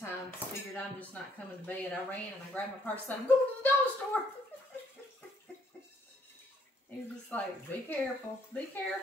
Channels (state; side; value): normal; both; correlation 0.68